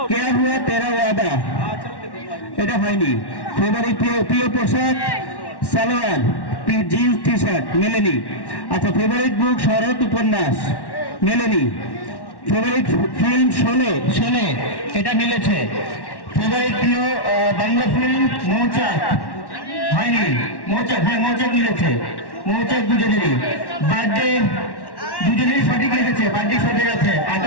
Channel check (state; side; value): late; right; 1.1 ms